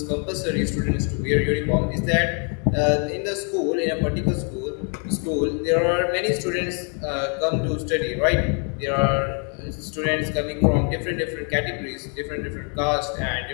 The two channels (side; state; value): right; quieter; 40.0 dB